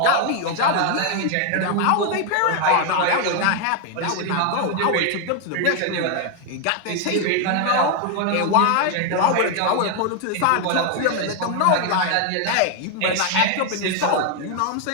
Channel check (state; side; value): different; both; correlation 0.01